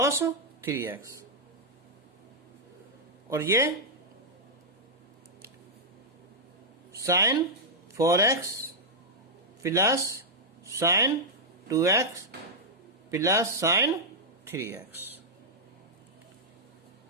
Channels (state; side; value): normal; both; correlation -0.07